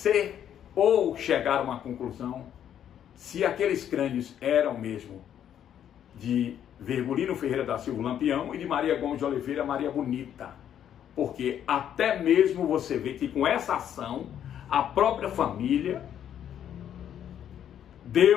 ou chegar a uma conclusão se aqueles crânios eram mesmo de Virgulino Ferreira da Silva Lampião e de Maria Gomes de Oliveira Maria Bonita. Porque até mesmo você vê que com essa ação, a própria família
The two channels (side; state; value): right; quieter; 9.8 dB